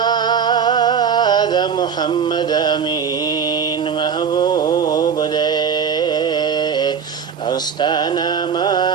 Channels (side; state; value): left; quieter; 6.8 dB